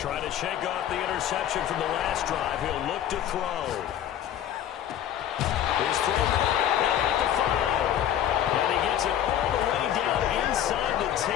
to shake off the interception from the last drive. He'll look to throw. His throw at the 5. And he gets it all the way down inside the 10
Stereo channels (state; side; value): quieter; right; 10.7 dB